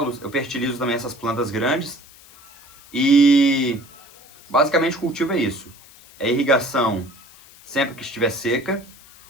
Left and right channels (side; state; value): left; noise; hiss, 23 dB below the sound